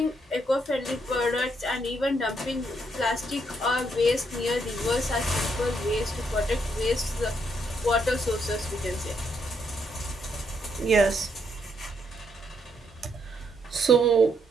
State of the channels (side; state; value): both; normal; correlation 0.75